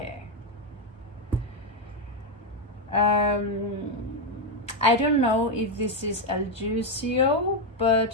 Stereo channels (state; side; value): normal; both; correlation 0.05